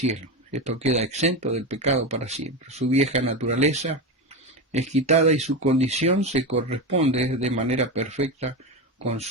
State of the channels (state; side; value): normal; both; correlation 0.17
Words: Esto queda exento del pecado para siempre. Su vieja naturaleza es quitada y su condición se corresponde de manera perfecta con